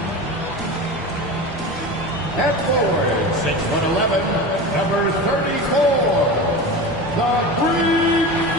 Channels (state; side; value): normal; both; correlation 0.28